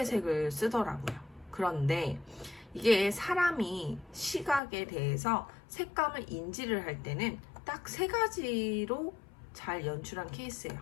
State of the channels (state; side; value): drops out; right; at 4.6 s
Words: 색을 쓰더라고요. 그런데 이게 사람이 시각에 대해서 색감을 인지를 할 때는 딱 3가지로 잘 연출한 케이스예요.